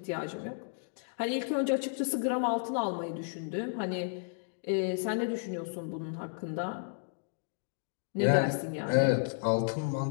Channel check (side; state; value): right; silent; digital silence